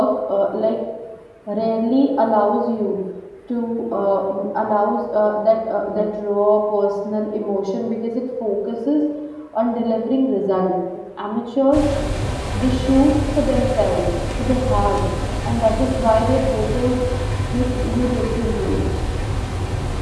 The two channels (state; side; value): identical; both; correlation 1.00